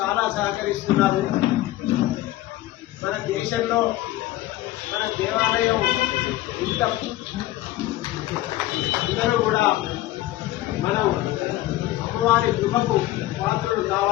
సహకరిస్తున్నారు. మన దేశంలో మన దేవాలయం ఇంత అందరూ కూడా మనం అమ్మవారి కృపకు పాత్రలు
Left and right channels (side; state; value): right; quieter; 15.9 dB